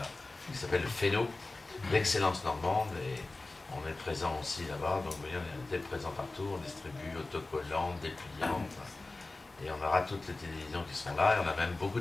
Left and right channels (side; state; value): right; quieter; 3.2 dB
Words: qui s'appelle le FENO, l'excellence normande, et on est présent aussi là-bas. Donc vous voyez, on est présent partout, on distribue autocollants, dépliants, et on aura toutes les télévisions qui seront là. Et on a même beaucoup